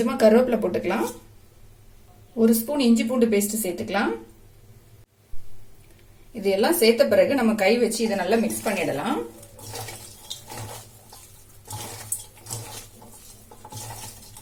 கருவேப்பிலை போட்டுக்கலாம். 1 ஸ்பூன் இஞ்சி பூண்டு பேஸ்ட் சேர்த்துக்கலாம். இது எல்லாம் சேர்த்த பிறகு நம்ம கை வச்சு இதை நல்லா மிக்ஸ் பண்ணிடலாம்.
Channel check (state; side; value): identical; both; correlation 1.00